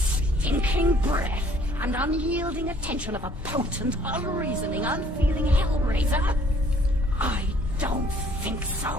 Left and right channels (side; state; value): both; normal; correlation 0.59